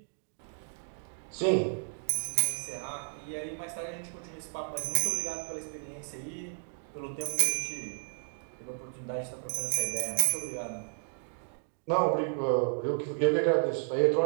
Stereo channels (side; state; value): left; silent; 56 dB below the other